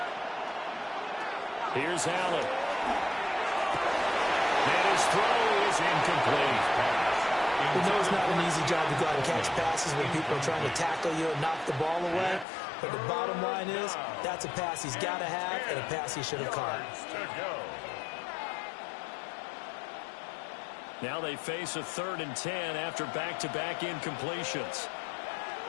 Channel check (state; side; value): drops out; right; at 12.5 s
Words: Here's Allen. And his throw is incomplete. We know it's not an easy job to go out and catch passes when people are trying to tackle you and knock the ball away. But the bottom line is, that's a pass he's got to have and a pass he should have caught. Now they face a 3rd and 10 after back-to-back incompletions.